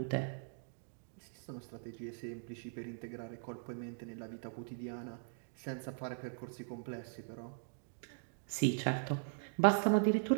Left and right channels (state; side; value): silent; left; digital silence